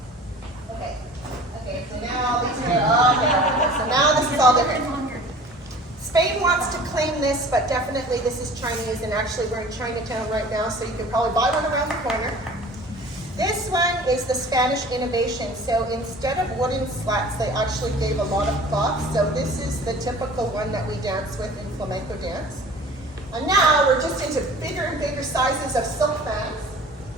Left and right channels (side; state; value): both; normal; correlation 0.44